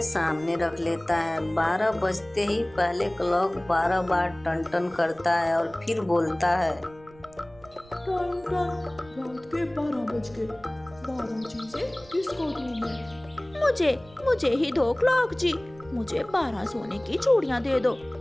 सामने रख लेता है। 12 बजते ही पहले क्लॉक 12 बार टन टन करता है और फिर बोलता है, टन टन, रात के 12 बज गए। 12 चीजें किसको दूं मैं? मुझे ही दो क्लॉक जी। मुझे 12 सोने की चूड़ियाँ दे दो,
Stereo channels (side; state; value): right; noise; rumble, 24 dB below the sound